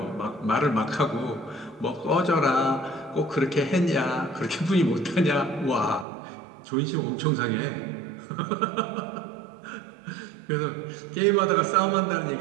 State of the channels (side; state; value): left; drops out; at 6.1 s